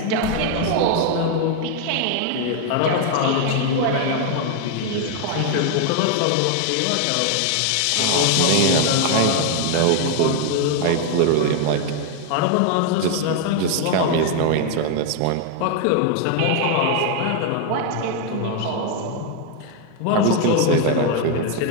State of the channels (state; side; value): different; both; correlation 0.01